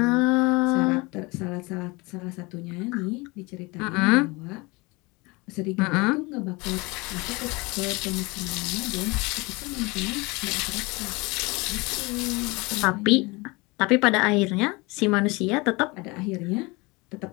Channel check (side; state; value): right; quieter; 25.4 dB